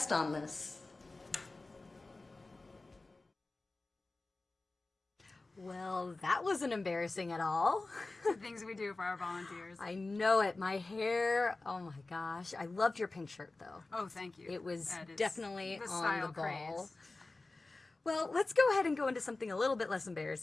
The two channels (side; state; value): right; quieter; 3.3 dB